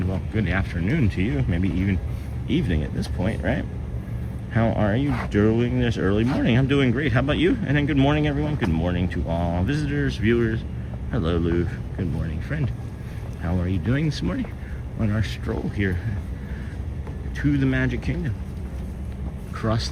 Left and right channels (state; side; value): identical; both; correlation 1.00